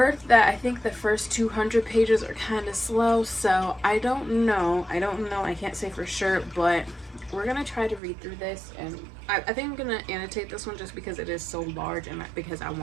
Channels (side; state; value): left; drops out; at 8.0 s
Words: that I think the first 200 pages are kind of slow, so I don't know. I can't say for sure, but we're going to try to read through this. And I think I'm going to annotate this one just because it is so large, and because I